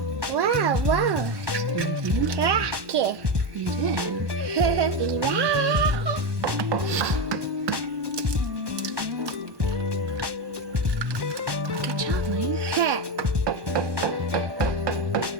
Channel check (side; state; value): left; late; 1.1 ms